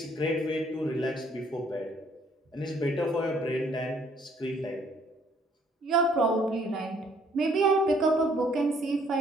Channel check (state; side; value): normal; both; correlation 0.63